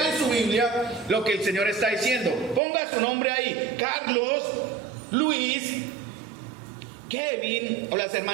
en su Biblia lo que el Señor está diciendo, ponga su nombre ahí, Carlos, Luis, Kevin, o las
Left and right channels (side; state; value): left; drops out; at 2.6 s